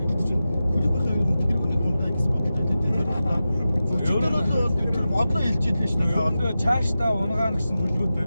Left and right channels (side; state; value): both; inverted; correlation -0.93